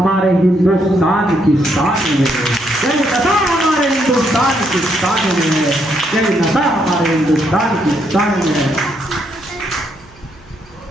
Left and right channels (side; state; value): right; noise; hum, 26 dB below the sound